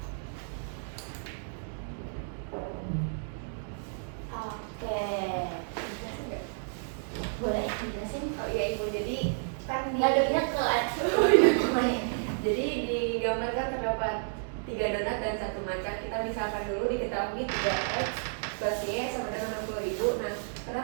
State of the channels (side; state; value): left; silent; digital silence